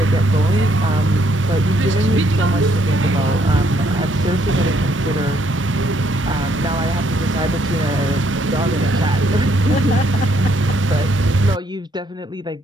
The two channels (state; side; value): normal; both; correlation 0.70